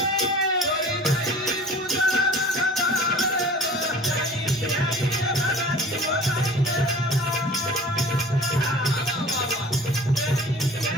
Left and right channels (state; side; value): normal; both; correlation 0.45